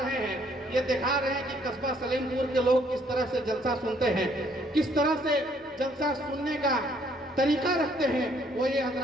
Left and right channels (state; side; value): normal; both; correlation 0.65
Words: رہے ہیں، یہ دکھا رہے ہیں کہ قصبہ سلیم پور کے لوگ کس طرح سے جلسہ سنتے ہیں، کس طرح سے جلسہ سننے کا طریقہ رکھتے ہیں۔ وہ یہ